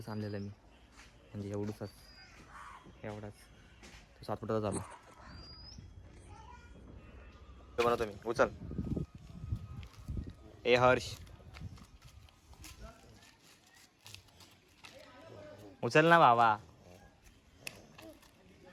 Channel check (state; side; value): identical; both; correlation 1.00